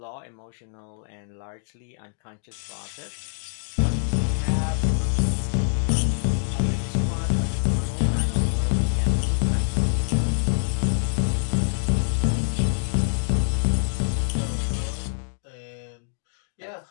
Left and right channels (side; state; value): right; silent; digital silence